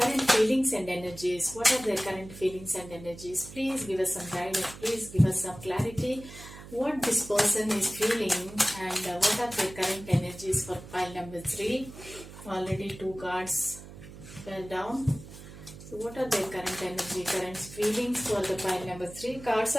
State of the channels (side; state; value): right; noise; hum, 15 dB below the sound